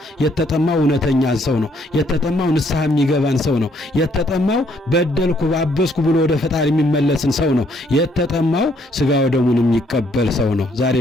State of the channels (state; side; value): normal; both; correlation 0.68